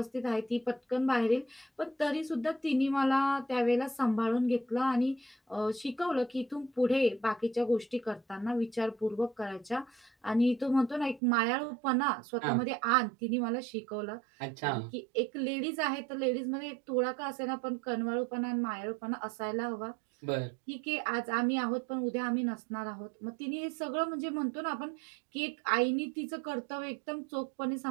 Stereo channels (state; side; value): drops out; left; at 11.2 s